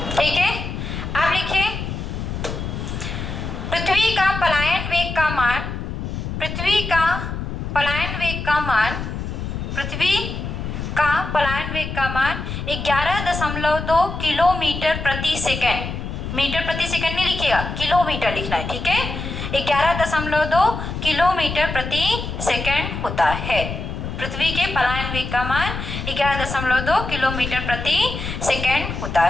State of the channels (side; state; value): left; noise; rumble, 5 dB below the sound